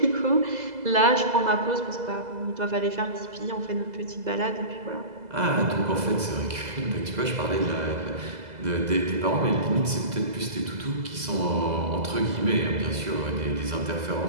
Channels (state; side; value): late; left; 2.0 ms